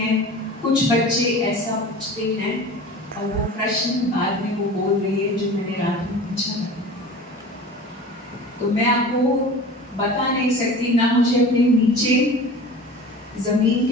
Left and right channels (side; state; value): both; normal; correlation 0.38